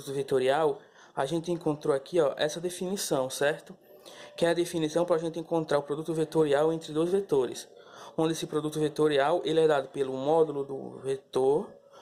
vetorial, a gente encontrou aqui, ó, essa definição, certo? Que é a definição para a gente encontrar o produto vetorial entre dois vetores. Onde esse produto vetorial, ele é dado pelo módulo do vetor,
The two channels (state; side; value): identical; both; correlation 1.00